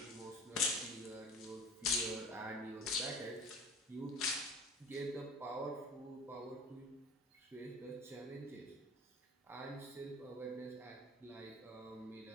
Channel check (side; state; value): both; normal; correlation 0.40